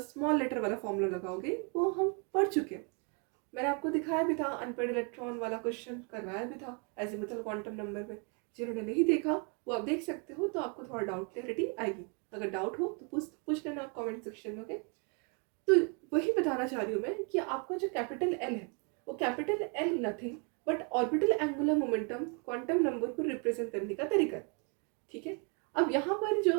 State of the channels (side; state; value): left; quieter; 36.4 dB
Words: लेटर वाला फॉर्मूला लगाओगे, वो हम पढ़ चुके हैं। मैंने आपको दिखाया भी था, अनपेड इलेक्ट्रॉन वाला क्वेश्चन करवाया भी था एजिमुथल क्वांटम नंबर में। जिन्होंने नहीं देखा वो आप देख सकते हो, तो आपको थोड़ा डाउट क्लैरिटी आएगी। अगर डाउट हो तो पूछ लेना आप कमेंट सेक्शन में। ओके, तो वही बताना चाह रही हूँ मैं कि आपका जो कैपिटल एल है वो capital L nothing but orbital angular momentum quantum number को रिप्रेजेंट करने का तरीका है। ठीक है, अब यहाँ पर